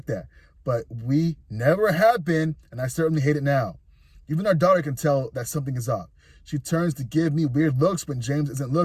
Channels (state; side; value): identical; both; correlation 1.00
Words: that, but we never have been, and I certainly hate it now. Even our daughter can tell that something is off. She turns to give me weird looks when James isn't